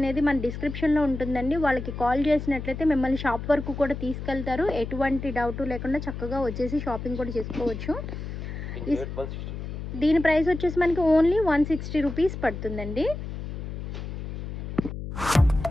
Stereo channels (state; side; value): noise; left; hum, 7 dB below the sound